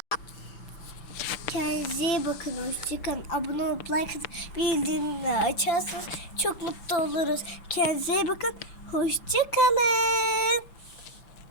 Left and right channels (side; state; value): right; late; 5.9 ms